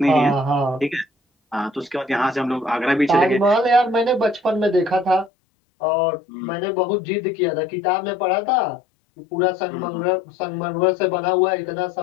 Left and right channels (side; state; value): right; drops out; at 5.3 s